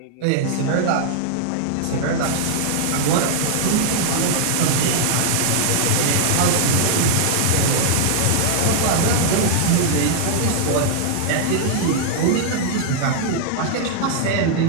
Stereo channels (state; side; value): different; both; correlation -0.01